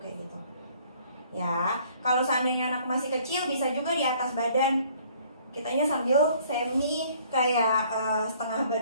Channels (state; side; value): inverted; both; correlation -0.58